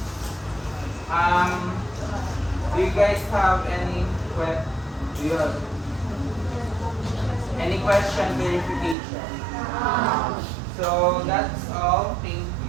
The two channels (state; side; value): drops out; left; at 9.0 s